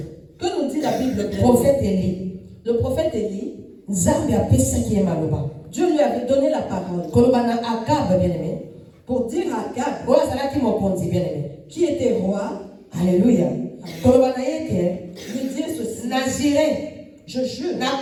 Que nous dit la Bible? Prophète Élie. Le prophète Élie, Dieu lui avait donné la parole pour dire à Akab, qui était roi, Alléluia, lui dire ceci. Je jure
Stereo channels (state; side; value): identical; both; correlation 1.00